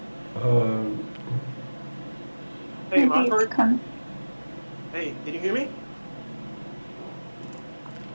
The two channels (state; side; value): inverted; both; correlation -1.00